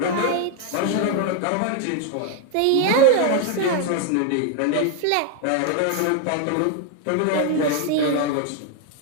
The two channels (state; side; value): different; both; correlation 0.01